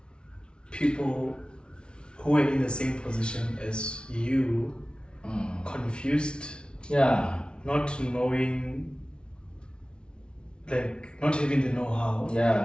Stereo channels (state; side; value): late; right; 0.056 ms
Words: people who are in the same position as you, confused, not knowing, like not having the know-how,